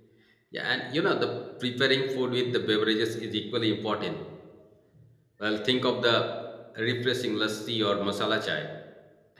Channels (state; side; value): identical; both; correlation 1.00